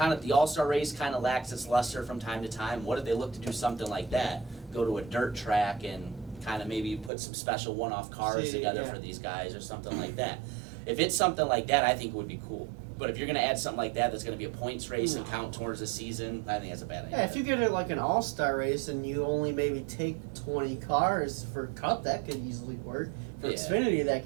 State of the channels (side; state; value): left; drops out; at 7.1 s